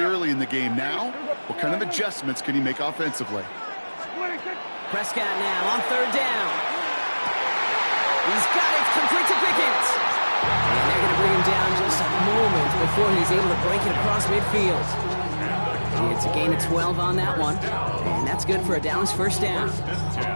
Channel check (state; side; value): inverted; both; correlation -1.00